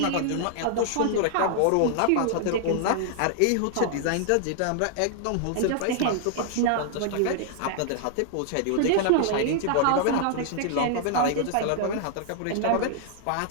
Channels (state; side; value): different; both; correlation 0.00